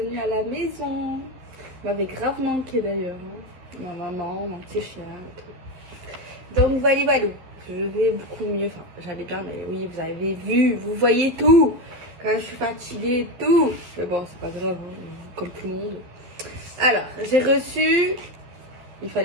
à la maison. M'avait grave manqué d'ailleurs, hein. Ma maman, mon petit chien et tout. Donc voilà, voilà, je vais beaucoup mieux. Enfin, j'allais bien, mais oui, vous avez vu, vous voyez tout. Quand je suis fatiguée et tout. Mais bon, c'est pas grave, hein, comme tout le monde. Alors, j'ai reçu, il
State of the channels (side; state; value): left; late; 11 ms